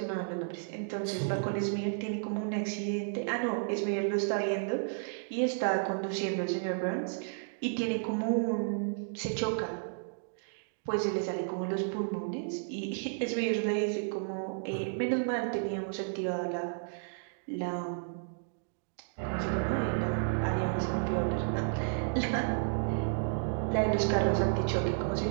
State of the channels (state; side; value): silent; left; digital silence